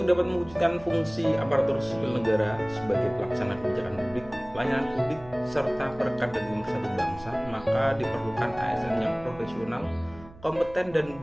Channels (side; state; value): right; noise; hum, 21 dB below the sound